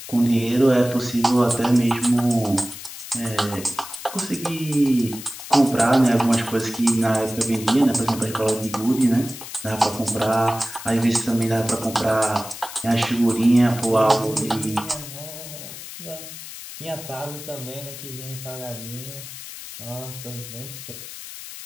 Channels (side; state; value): left; noise; hiss, 12 dB below the sound